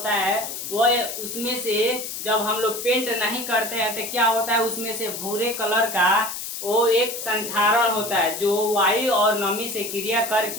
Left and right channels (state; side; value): noise; left; hiss, 7 dB below the sound